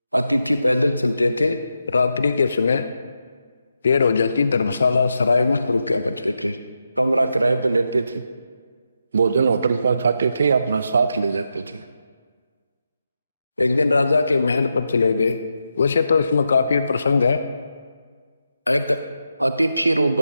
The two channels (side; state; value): both; inverted; correlation -0.86